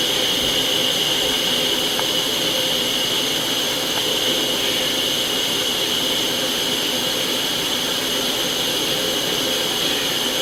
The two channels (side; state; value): both; identical; correlation 1.00